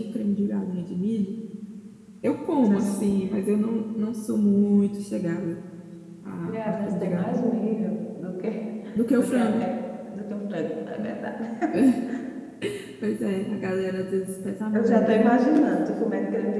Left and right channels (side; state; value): both; identical; correlation 1.00